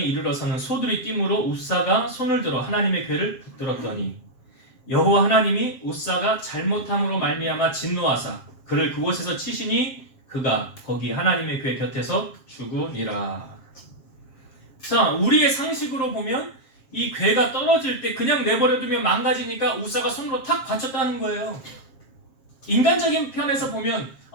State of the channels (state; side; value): late; right; 7.5 ms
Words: 이르러서는 소들이 뛰므로 우사가 손을 들어 하나님의 궤를 붙들었더니 여호와 하나님이 우사가 잘못함으로 말미암아 진노하사 그를 그곳에서 치시니 그가 거기 하나님의 궤 곁에서 죽으니라. 자, 우리의 상식으로 보면 이 궤가 떨어질 때 그냥 내버려두면 망가지니까 우사가 손으로 탁 받쳤다는 거예요. 인간적인 편에서 보면